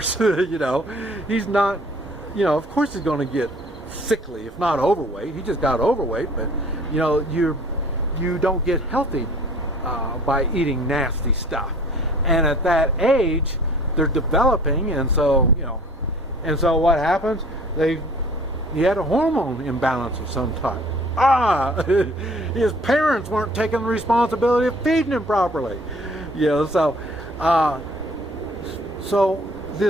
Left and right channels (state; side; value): normal; both; correlation 0.52